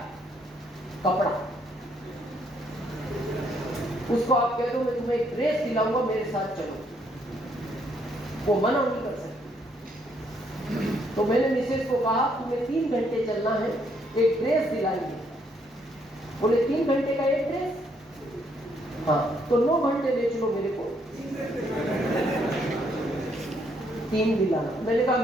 कपड़ा। उसको आप कह दो मैं तुम्हें एक ड्रेस दिलाऊंगा, मेरे साथ चलो, वो मना नहीं कर सकती। तो मैंने मिसेज को कहा तुम्हें 3 घंटे चलना है, एक ड्रेस दिलाएंगे। बोले 3 घंटे का एक ड्रेस? हाँ, तो 9 घंटे ले चलो मेरे को, 3 दिलाना। मैंने कहा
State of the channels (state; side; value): normal; both; correlation 0.71